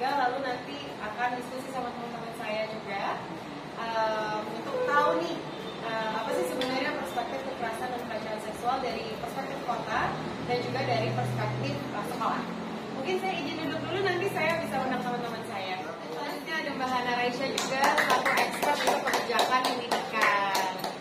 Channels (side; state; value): both; identical; correlation 1.00